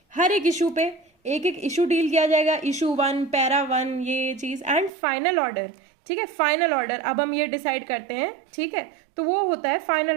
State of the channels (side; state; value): left; drops out; at 4.9 s